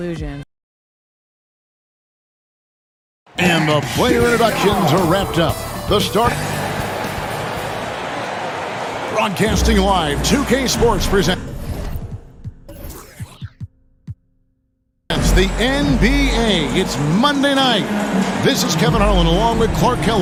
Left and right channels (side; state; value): both; identical; correlation 1.00